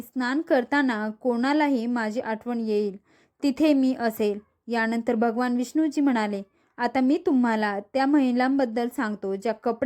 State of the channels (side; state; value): both; identical; correlation 1.00